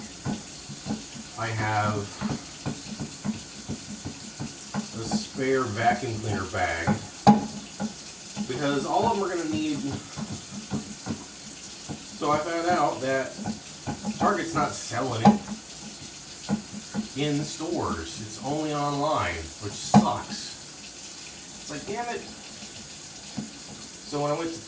I have a spare vacuum cleaner bag because all of them are going to need. So I found out that Target's not selling it in the stores. It's only online, which sucks. It's like, damn it. So when I went to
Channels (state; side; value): identical; both; correlation 1.00